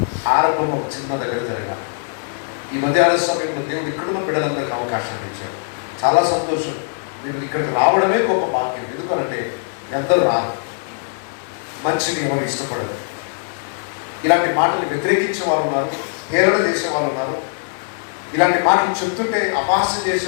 ఆరంభం ఒక చిన్న దగ్గర జరగాలి. ఈ మధ్యాహ్న సమయంలో దేవుడు ఇక్కడున్న బిడ్డలందరికీ అవకాశం ఇచ్చాడు. చాలా సంతోషం. మీరు ఇక్కడికి రావడమే గొప్ప భాగ్యం. ఎందుకంటే ఎందరూ రారు, మంచిని ఎవరు ఇష్టపడరు. ఇలాంటి మాటలు వ్యతిరేకించే వాళ్ళు ఉన్నారు, హేళన చేసే వాళ్ళు ఉన్నారు. ఇలాంటి మాటలు చెప్తుంటే అపహాస్యం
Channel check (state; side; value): silent; right; digital silence